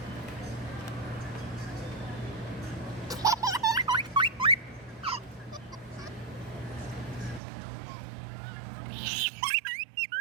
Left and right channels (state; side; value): drops out; left; at 7.4 s